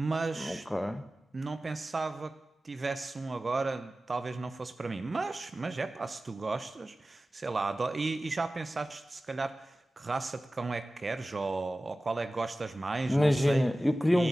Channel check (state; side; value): normal; both; correlation 0.96